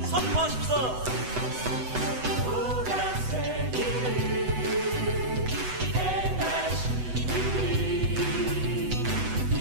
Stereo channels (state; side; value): late; left; 8.0 ms